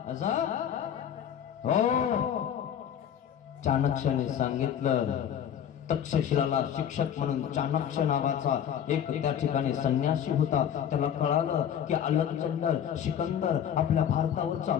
असं हो, चाणक्याने सांगितलं. तक्षशिलाला शिक्षक म्हणून चाणक्य नावाचा एक त्या ठिकाणी संन्यासी होता. त्याला कळालं की अलेक्झांडर सिकंदर आपल्या भारतावर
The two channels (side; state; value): right; quieter; 9.2 dB